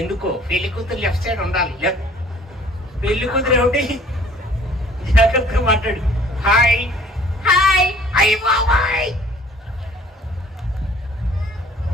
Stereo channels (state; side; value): normal; both; correlation 0.54